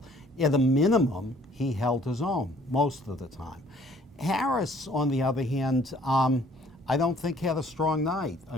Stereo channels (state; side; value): normal; both; correlation 0.58